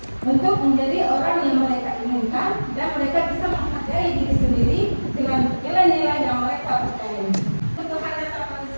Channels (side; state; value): both; inverted; correlation -1.00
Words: untuk menjadi orang yang mereka inginkan dan mereka bisa menghargai diri sendiri dengan nilai-nilai yang mereka percayai. Kebutuhan dasar